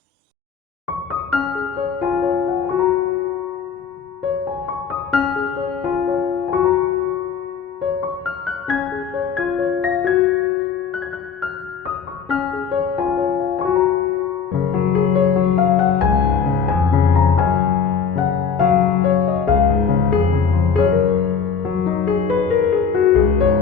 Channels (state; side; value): quieter; right; 6.5 dB